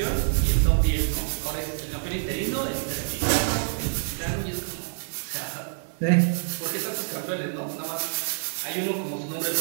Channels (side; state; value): left; silent; digital silence